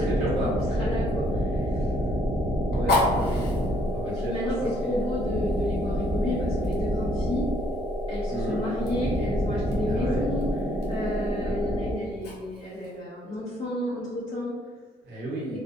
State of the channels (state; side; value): normal; both; correlation 0.66